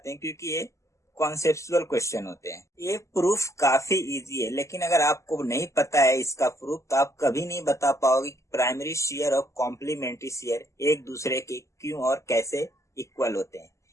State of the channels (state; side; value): late; right; 0.14 ms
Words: हैं, क्योंकि ये कॉन्सेप्चुअल क्वेश्चन होते हैं। ये प्रूफ काफी इजी है, लेकिन अगर आपको नहीं पता है इसका प्रूफ तो आप कभी नहीं बता पाओगे कि प्राइमरी शियर और कॉम्प्लीमेंट्री शियर एक दूसरे के क्यों और कैसे इक्वल होते हैं।